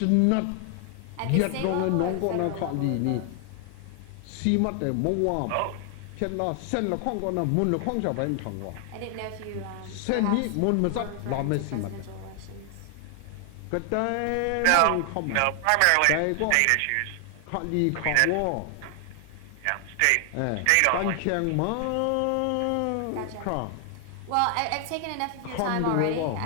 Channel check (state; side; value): different; both; correlation 0.00